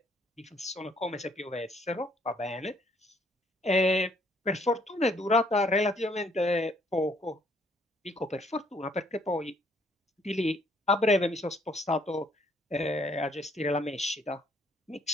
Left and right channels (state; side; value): normal; both; correlation 0.66